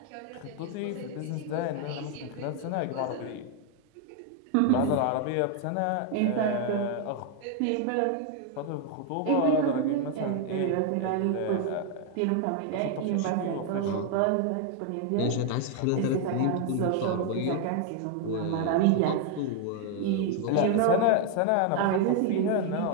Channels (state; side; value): different; both; correlation 0.01